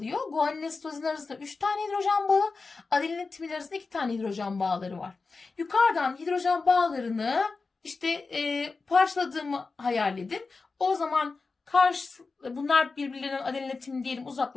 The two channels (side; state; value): right; quieter; 4.2 dB